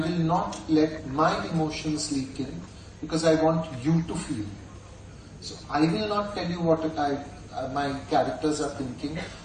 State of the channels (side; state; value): both; identical; correlation 1.00